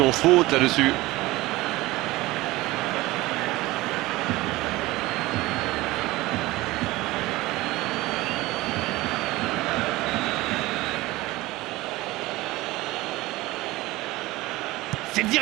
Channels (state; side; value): quieter; left; 19.3 dB